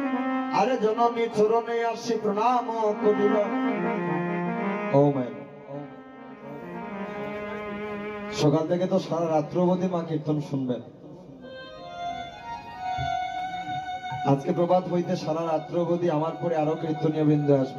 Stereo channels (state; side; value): identical; both; correlation 1.00